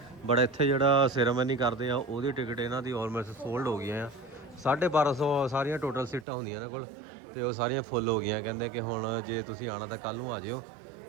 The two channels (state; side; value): drops out; left; at 6.2 s